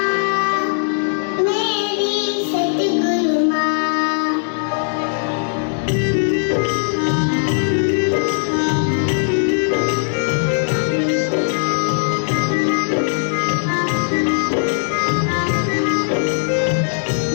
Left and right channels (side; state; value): right; silent; digital silence